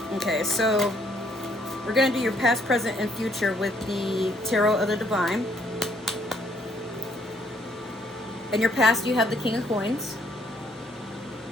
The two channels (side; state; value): both; normal; correlation 0.67